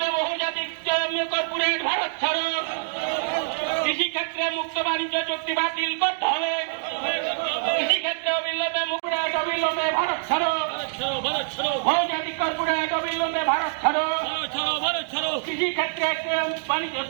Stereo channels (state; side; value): silent; left; digital silence